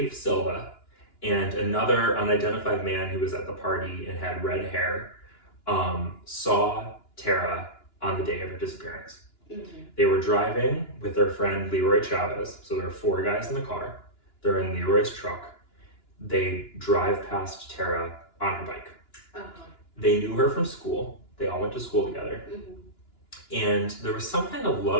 Silva, and another unidentified man who was at the party and had red hair, saw Tara on the day of her disappearance. They were driving with their friend Leroy Chavez, so there are 4 guys in the car. They're in Leroy's truck. They drive past Tara on her bike. They knew her from school. They all went to school together. And there was some kind of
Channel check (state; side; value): late; right; 2.9 ms